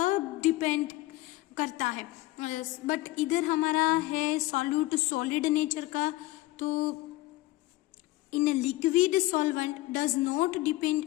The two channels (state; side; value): quieter; right; 18.6 dB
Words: डिपेंड करता है। बट इधर हमारा है सॉल्यूट सॉलिड नेचर का। तो in liquid solvent does not